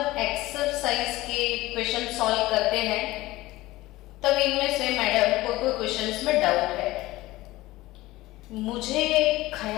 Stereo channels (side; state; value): right; quieter; 18.3 dB